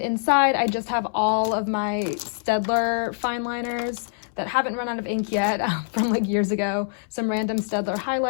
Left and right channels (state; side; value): silent; right; 62 dB below the other